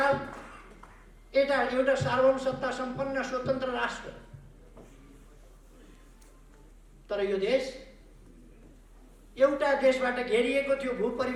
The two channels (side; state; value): both; identical; correlation 1.00